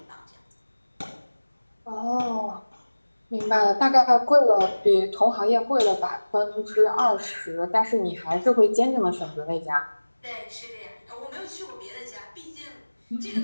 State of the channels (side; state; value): both; inverted; correlation -1.00